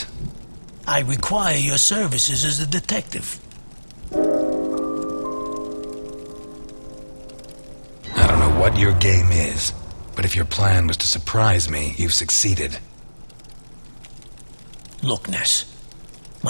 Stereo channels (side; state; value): both; inverted; correlation -1.00